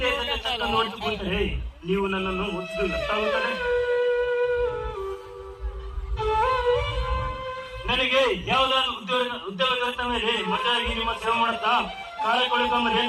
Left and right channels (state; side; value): identical; both; correlation 1.00